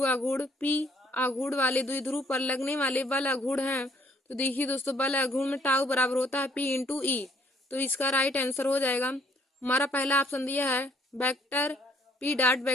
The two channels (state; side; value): normal; both; correlation 0.64